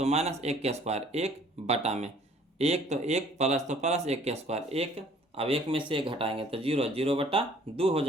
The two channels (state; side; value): normal; both; correlation 0.56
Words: माइनस, एक के स्क्वायर, एक बटा में एक, तो एक प्लस तो प्लस, एक के स्क्वायर एक, अब एक में से एक घटाएंगे तो 0 बटा 2 हो